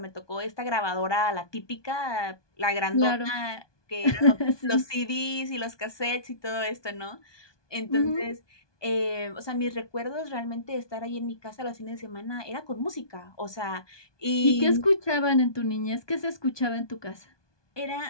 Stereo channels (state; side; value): late; right; 1.2 ms